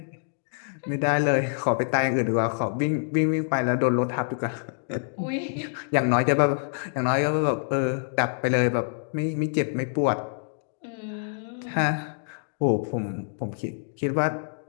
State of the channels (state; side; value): silent; right; digital silence